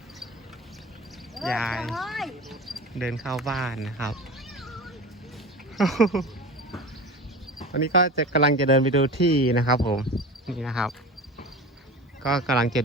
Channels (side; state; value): both; normal; correlation 0.32